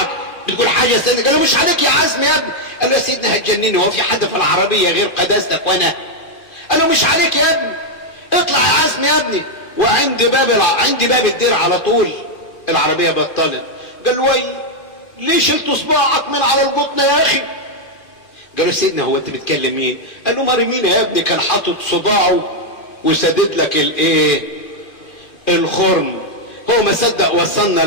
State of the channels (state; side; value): late; right; 2.4 ms